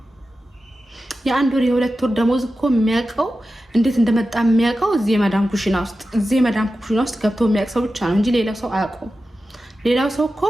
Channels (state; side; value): normal; both; correlation 0.93